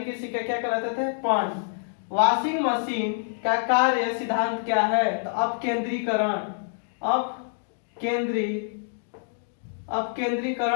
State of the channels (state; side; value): silent; right; digital silence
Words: के सिक्के क्या कहलाते थे? पर्ण। वॉशिंग मशीन का कार्य सिद्धांत क्या है? तो अपकेंद्रीकरण।